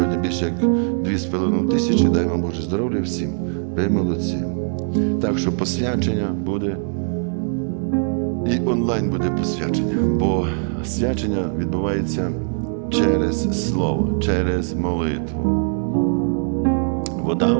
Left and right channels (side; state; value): left; silent; 56 dB below the other